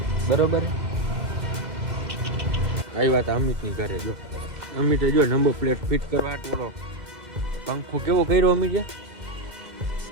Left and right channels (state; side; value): late; left; 2.1 ms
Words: બરોબર. કઈ વાત અમિતની ઘરે જો અમિતે જો નંબર પ્લેટ ફિટ કરવા ટોળો પંખો કેવો કર્યો અમિતે.